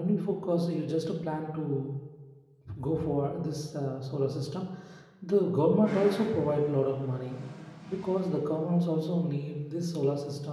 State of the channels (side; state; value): both; identical; correlation 1.00